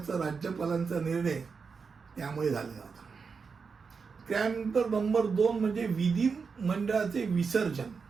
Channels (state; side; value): quieter; left; 5.3 dB